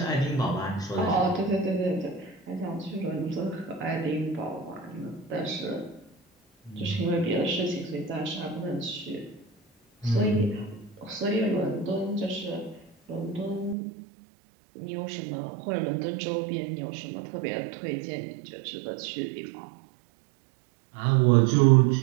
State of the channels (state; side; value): drops out; left; at 13.8 s